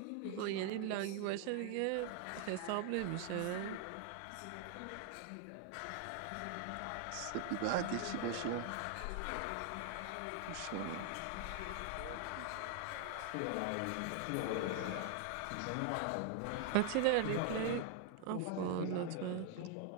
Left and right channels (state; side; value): different; both; correlation 0.00